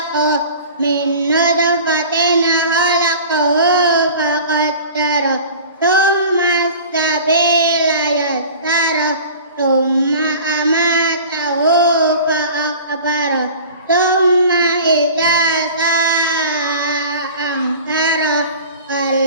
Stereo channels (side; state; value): both; inverted; correlation -0.40